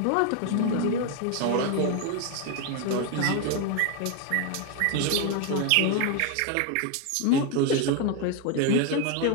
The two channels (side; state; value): both; different; correlation 0.01